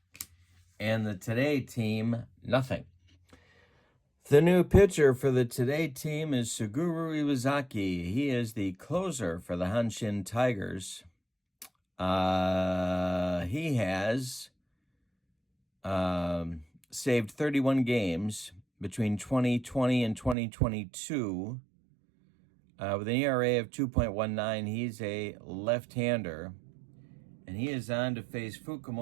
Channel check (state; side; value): drops out; left; at 20.4 s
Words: and the Today team nothing. The new pitcher for the Today team is Suguru Iwazaki. He is the closer for the Hanshin Tigers. He has saved 31 games between 2020 and 2022 with an ERA of 2.19. He's a left-hander, and he is on to face